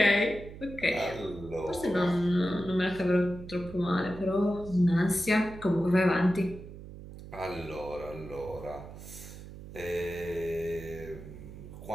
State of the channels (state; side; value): noise; right; hum, 14 dB below the sound